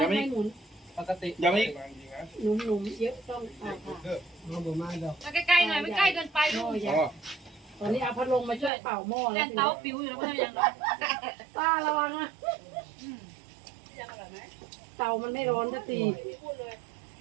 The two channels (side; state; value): left; drops out; at 8.7 s